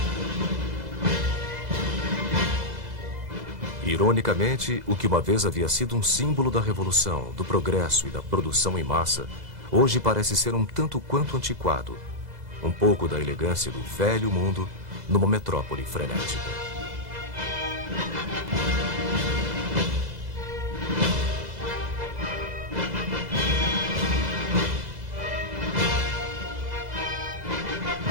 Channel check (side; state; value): left; late; 2.0 ms